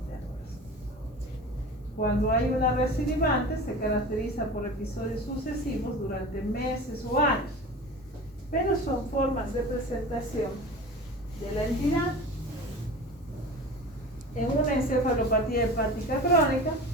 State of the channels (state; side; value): normal; both; correlation 0.35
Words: Cuando hay una recidivante, se caracteriza por episodios sucesivos durante meses o años, pero son formas de presentación de la entidad. En una encefalopatía hepática crónica